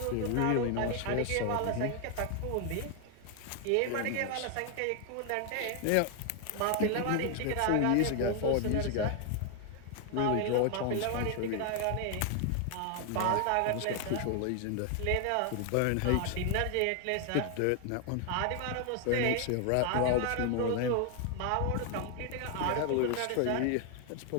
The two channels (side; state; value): both; different; correlation 0.00